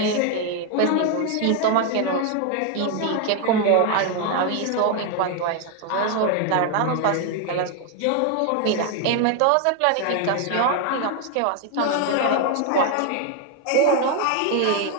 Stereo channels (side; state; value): both; different; correlation 0.01